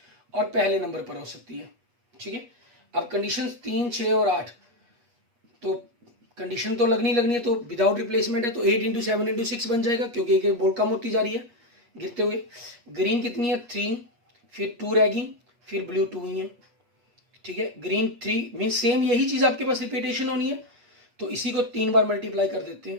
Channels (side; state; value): left; late; 8.4 ms